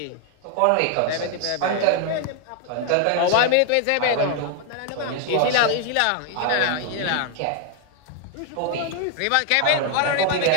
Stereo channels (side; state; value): both; different; correlation 0.01